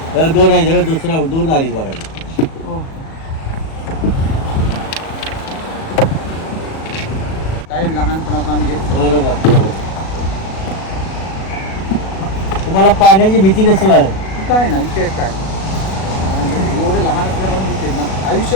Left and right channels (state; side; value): late; right; 37 ms